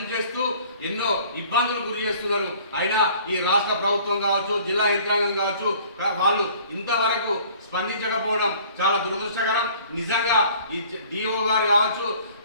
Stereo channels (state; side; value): inverted; both; correlation -0.52